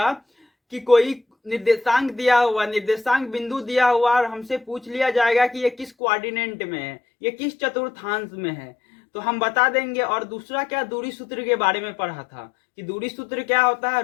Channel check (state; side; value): drops out; right; at 5.9 s